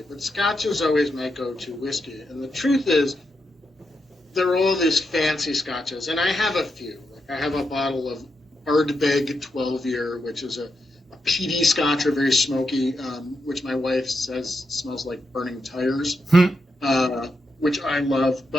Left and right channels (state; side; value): normal; both; correlation 0.84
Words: but Scotch is always my go-to whiskey. And the truth is, there are all these fancy Scotches, and I have a few. Like I have a bottle of Ardbeg 12-year, which is a peaty Scotch, or very smoky, which my wife says smells like burning tires, which I love.